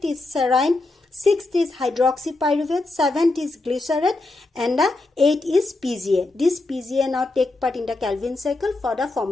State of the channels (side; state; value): right; quieter; 3.1 dB